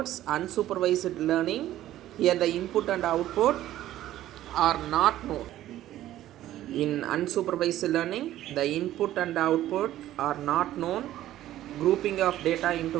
unsupervised learning, here the input and output are not known. In unsupervised learning, the input and output are not known, grouping of data into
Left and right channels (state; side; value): quieter; left; 13.6 dB